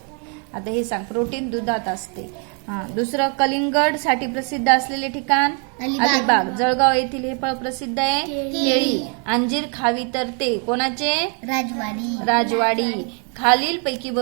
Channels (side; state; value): left; quieter; 39.6 dB